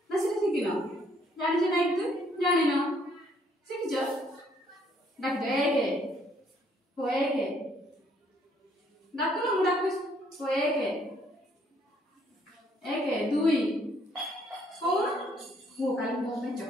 ना से शिखिन जानिछ ना एक दुई जानिन शिखिछ डाक दे हो एक डाकुन मु डाकुछ हो एक दुई कौन वो काली मो में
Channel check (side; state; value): both; normal; correlation 0.66